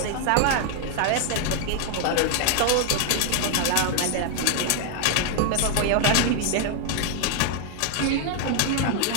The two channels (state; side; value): different; both; correlation 0.00